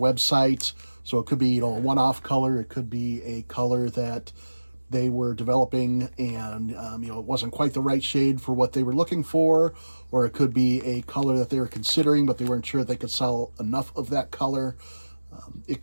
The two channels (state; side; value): inverted; both; correlation -1.00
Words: So it could be, a one-off color. It could be a color that they were developing and it wasn't quite the right shade for what they were looking for, or it could be a color that they were considering but they weren't sure they could sell enough of that color.